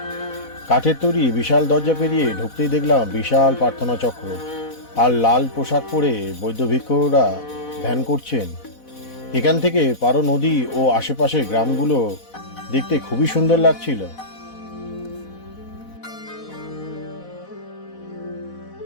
কাঠের তৈরি বিশাল দরজা পেরিয়ে ঢুকতেই দেখলাম বিশাল প্রার্থনা চক্র, আর লাল পোশাক পরে বৌদ্ধ ভিক্ষুরা ধ্যান করছেন। এখান থেকে পারো নদী ও আশেপাশের গ্রামগুলো দেখতে খুবই সুন্দর লাগছিল।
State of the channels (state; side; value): late; right; 4.1 ms